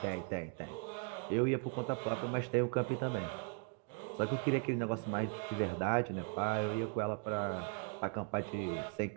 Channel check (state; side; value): quieter; left; 38.8 dB